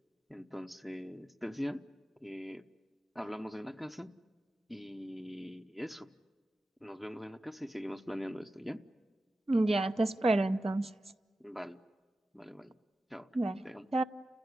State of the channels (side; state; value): both; normal; correlation 0.93